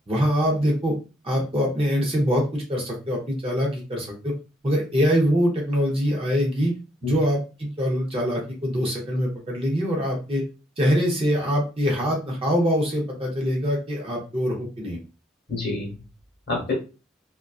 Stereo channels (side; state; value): both; normal; correlation 0.71